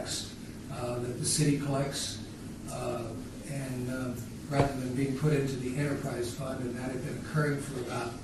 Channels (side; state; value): both; identical; correlation 1.00